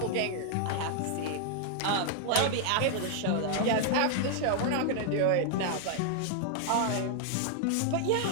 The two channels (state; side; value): different; both; correlation 0.00